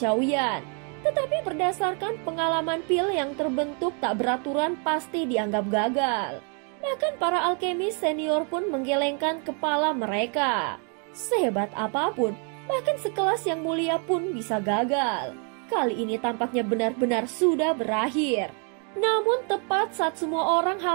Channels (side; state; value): left; quieter; 39.3 dB